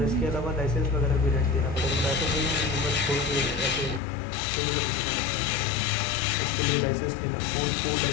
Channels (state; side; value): drops out; right; at 4.0 s